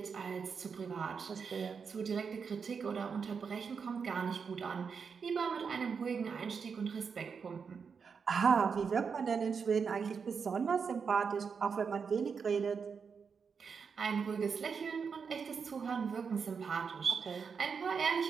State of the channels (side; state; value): left; quieter; 5.9 dB